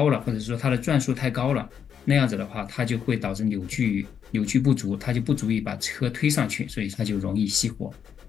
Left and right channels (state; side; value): quieter; right; 7.8 dB